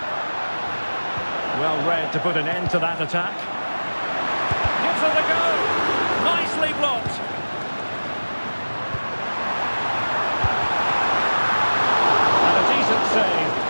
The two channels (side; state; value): both; inverted; correlation -1.00